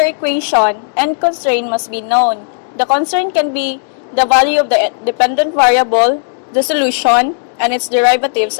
equation, n constraint must be known. The constraint can be the value of the dependent variable, the solution, and its derivatives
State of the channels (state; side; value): silent; right; digital silence